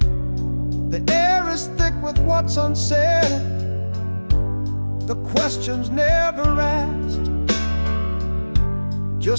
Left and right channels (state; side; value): inverted; both; correlation -1.00